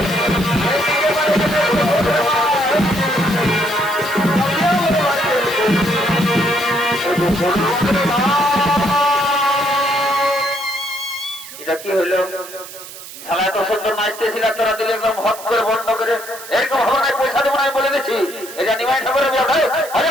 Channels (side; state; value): right; noise; hiss, 14 dB below the sound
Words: এটা কি হলো শালা এত সুন্দর নাচতেছিল তোরা দিলে একদম হট করে বন্ধ করে এরকম হবে না পয়সা দেবো না বলে দিচ্ছি এটা নিমাই ঠাকুরের ব্যবসায়